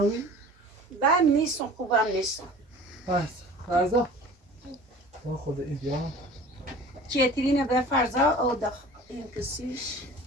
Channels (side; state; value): both; normal; correlation 0.43